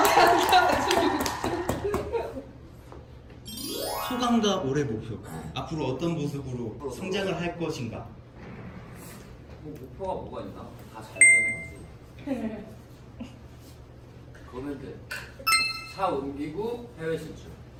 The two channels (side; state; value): both; identical; correlation 1.00